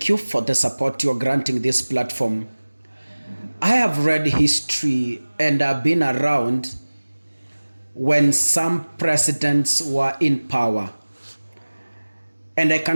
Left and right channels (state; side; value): inverted; both; correlation -1.00